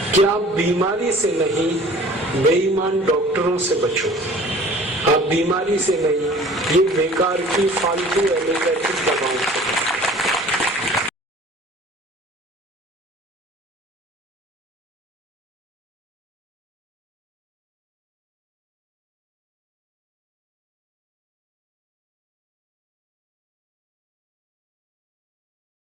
कि आप बीमारी से नहीं, बेईमान डॉक्टरों से बचो। आप बीमारी से नहीं, ये बेकार की फालतू एलोपैथिक दवाओं से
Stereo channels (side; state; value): both; normal; correlation 0.48